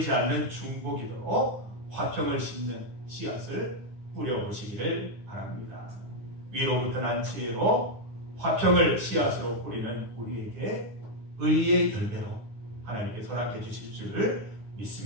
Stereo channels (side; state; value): left; late; 9.6 ms